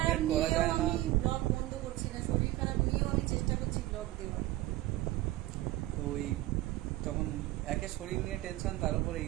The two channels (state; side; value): quieter; left; 16.9 dB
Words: করা যায় না। আমি ব্লগ বন্ধ করছি না, শরীর খারাপ নিয়েও আমি চেষ্টা করছি ব্লগ দেওয়ার। তো ওই তখন একে শরীর নিয়ে টেনশন, তার উপরে